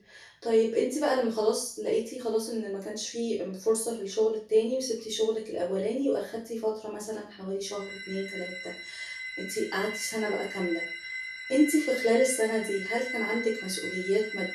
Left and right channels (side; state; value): both; identical; correlation 1.00